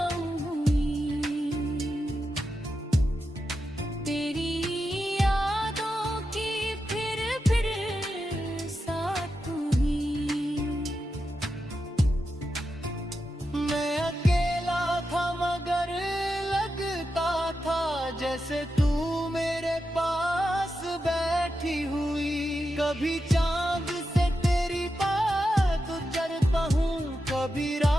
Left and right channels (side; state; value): both; normal; correlation 0.88